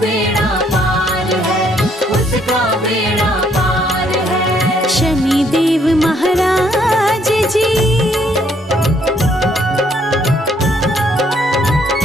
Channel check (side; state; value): both; normal; correlation 0.68